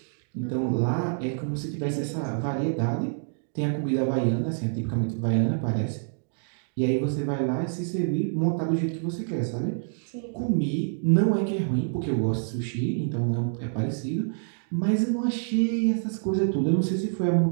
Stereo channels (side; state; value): left; silent; digital silence